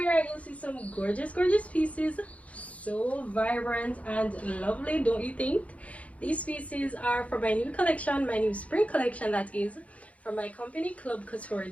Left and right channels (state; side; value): late; right; 0.066 ms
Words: you'll see some gorgeous pieces, so vibrant and lovely, don't you think? These pieces are from my new collection, my new spring collection, that is from my company CLUB COUTURE